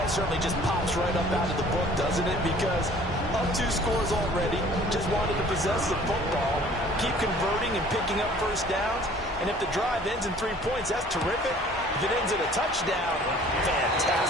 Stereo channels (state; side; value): normal; both; correlation 0.52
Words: it certainly just pops right up out of the book, doesn't it? Because up 2 scores already, just wanted to possess the football, keep converting and picking up first downs. And if the drive ends in 3 points, that's terrific. If it ends in a touchdown,